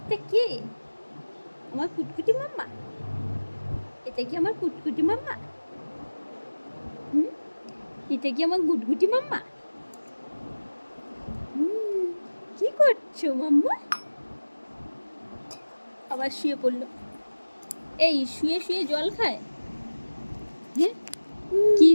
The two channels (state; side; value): inverted; both; correlation -1.00